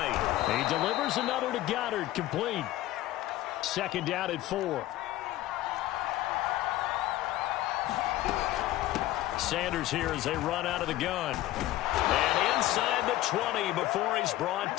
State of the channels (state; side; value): quieter; right; 15.5 dB